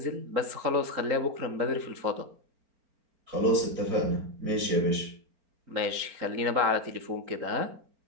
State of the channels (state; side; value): late; left; 4.4 ms